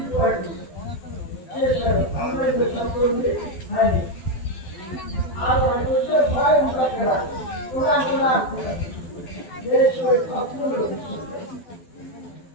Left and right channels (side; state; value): right; late; 12 ms